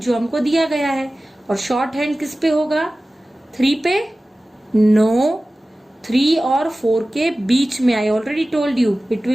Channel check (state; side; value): normal; both; correlation 0.96